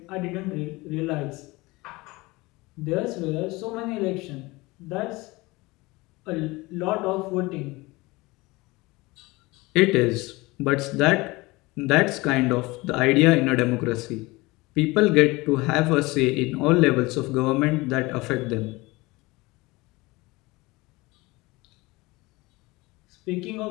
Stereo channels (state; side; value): quieter; right; 22.4 dB